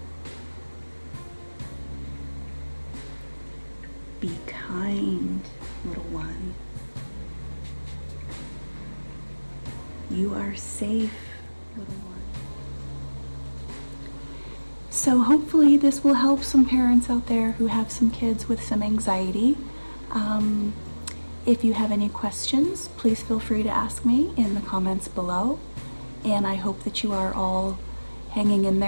Be kind, little one. You are safe, little one. So hopefully this will help some parents out there who have some kids with some anxiety. If you have any questions, please feel free to ask me in the comments below. And I hope that you are all hanging in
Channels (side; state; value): both; inverted; correlation -1.00